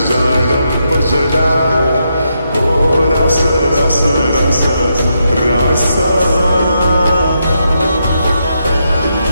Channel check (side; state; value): both; inverted; correlation -0.81